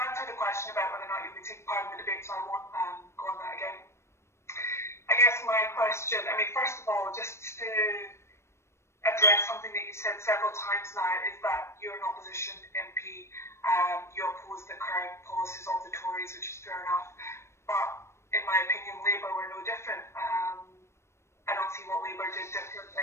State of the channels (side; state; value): right; late; 0.13 ms